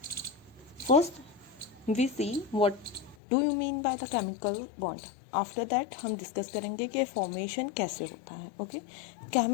First, we see what do you mean by the chemical bond. After that हम discuss करेंगे कि formation कैसे होता है. Okay,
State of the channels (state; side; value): drops out; right; at 3.2 s